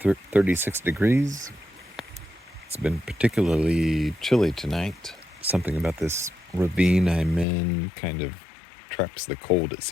36 degrees. It's been particularly chilly tonight. Something about this ravine I'm in kind of traps the cold, it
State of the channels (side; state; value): right; drops out; at 7.5 s